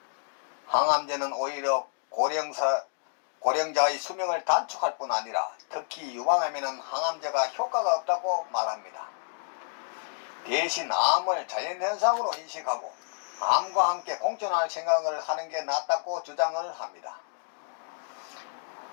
항암제는 오히려 고령자의 수명을 단축할 뿐 아니라 특히 유방암에는 항암제가 효과가 없다고 말합니다. 대신 암을 자연현상으로 인식하고 암과 함께 공존할 생각을 하는 게 낫다고 주장을 합니다.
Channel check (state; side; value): silent; right; digital silence